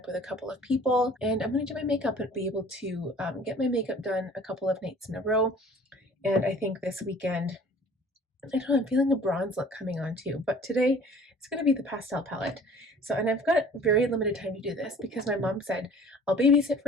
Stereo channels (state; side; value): normal; both; correlation 0.49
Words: with a couple of people, and I'm going to do my makeup and be able to get my makeup done a couple of nights in a row, and I think this weekend, I don't know, I'm feeling a bronze look coming on too, but today it's going to be the pastel palette. So, and I've got very limited time to do this because my mom said, I'll babysit